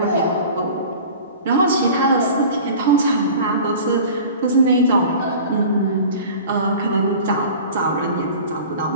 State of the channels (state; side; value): inverted; both; correlation -0.40